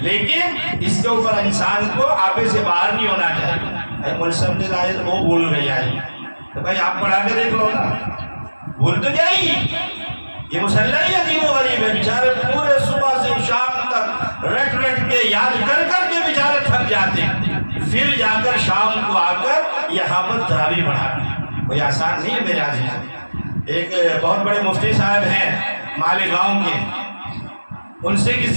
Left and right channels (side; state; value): both; inverted; correlation -1.00